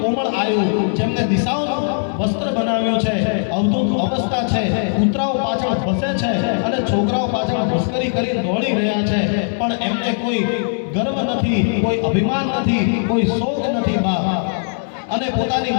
કોમળ આયુ જેમને દિશાઓનું વસ્ત્ર બનાવ્યું છે, અવધૂત અવસ્થા છે, કૂતરાઓ પાછળ ફસે છે અને છોકરાઓ પાછળ મસ્કરી કરી દોડી રહ્યા છે, પણ એમને કોઈ ગર્વ નથી, કોઈ અભિમાન નથી, કોઈ શોક નથી બાપ, અને પોતાની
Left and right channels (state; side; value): silent; right; 67 dB below the other